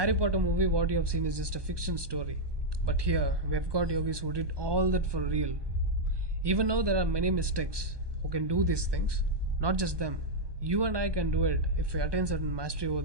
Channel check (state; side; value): late; left; 1.2 ms